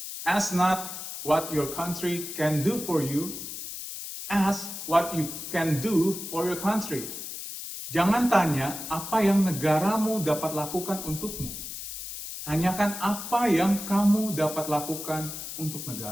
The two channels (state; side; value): noise; left; hiss, 8 dB below the sound